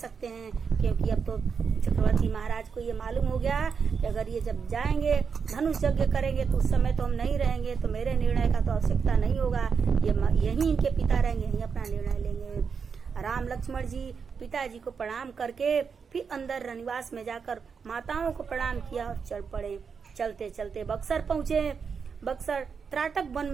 हैं। क्योंकि अब तो चक्रवर्ती महाराज को ये मालूम हो गया कि अगर ये जब जाएंगे धनुष यज्ञ करेंगे तो उस समय तो हम नहीं रहेंगे, तो मेरे निर्णय का तो आवश्यकता नहीं होगा, यही इनके पिता रहेंगे, यही अपना निर्णय लेंगे। राम लक्ष्मण जी पिताजी को प्रणाम करके फिर अंदर रनिवास में जाकर माताओं को प्रणाम किया और चल पड़े। चलते चलते बक्सर पहुँचे। बक्सर त्राटक वन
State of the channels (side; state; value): left; quieter; 6.0 dB